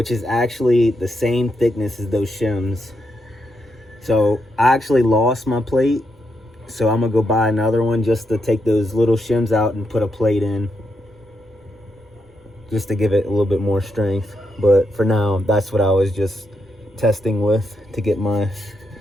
is actually the same thickness as those shims. So I actually lost my plate, so I'm gonna go buy another one just to take those little shims out and put a plate in, just to give it a little bit more strength. But for now, that's what I was just testing with to get my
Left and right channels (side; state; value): both; normal; correlation 0.81